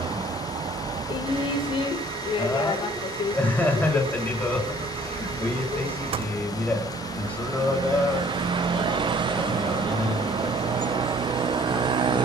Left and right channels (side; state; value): both; normal; correlation 0.56